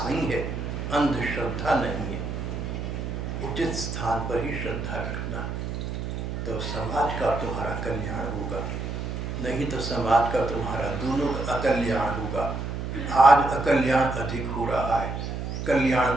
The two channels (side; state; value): right; noise; hum, 4 dB below the sound